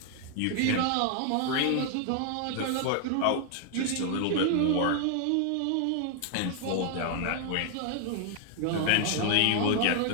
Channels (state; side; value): different; both; correlation 0.00